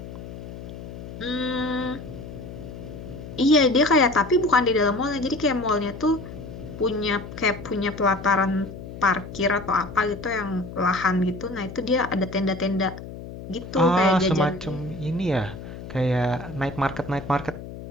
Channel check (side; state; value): left; noise; hum, 12 dB below the sound